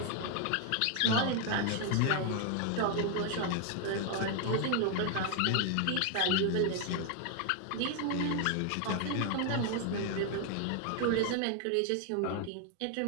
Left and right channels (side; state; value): both; different; correlation 0.00